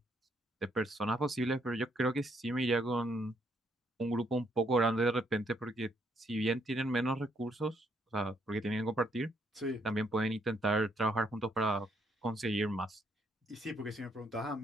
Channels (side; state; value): both; normal; correlation 0.72